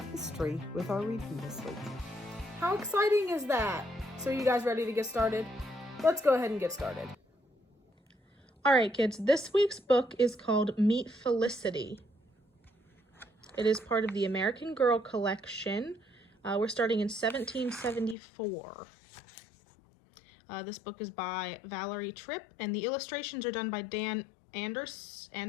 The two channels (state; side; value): drops out; right; at 18.2 s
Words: history with our reading this week. How exciting is that? So, are you guys ready to get started? Let's go ahead and get started. All right, kids, this week's book is called Meet Felicity. It is part of the American Girl collection. We're starting in 1774. This book is by Valerie Tripp, and the illustrations are done by Dan